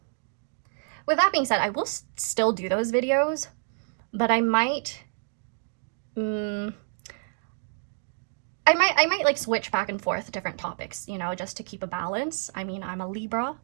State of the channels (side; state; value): left; silent; digital silence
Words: With that being said, I will still do those videos, but I might like switch back and forth different topics, you know, just to keep a balance. I mean, I'm a Libra